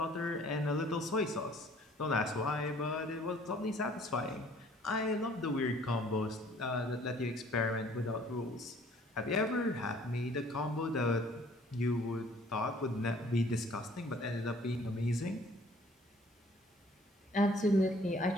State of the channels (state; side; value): normal; both; correlation 0.56